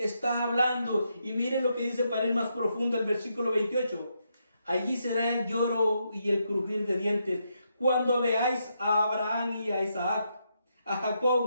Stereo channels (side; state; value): both; inverted; correlation -0.80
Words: hablando, y miren lo que dice para ir más profundo el versículo 28. Allí será el lloro y el crujir de dientes, cuando veáis a Abraham y a Isaac, a